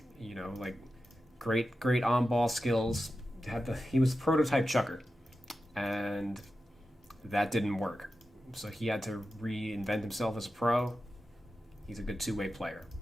You know, like great on ball skills. He was prototype chucker, and that didn't work. So he had to reinvent himself as a pro. He's a good two-way player.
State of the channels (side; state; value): both; normal; correlation 0.92